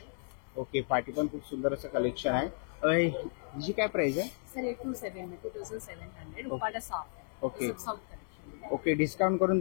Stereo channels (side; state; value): right; silent; 55 dB below the other